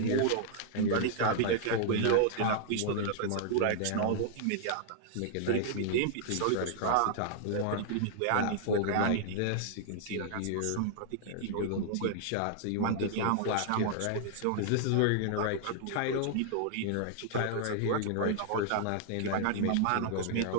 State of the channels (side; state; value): both; different; correlation -0.01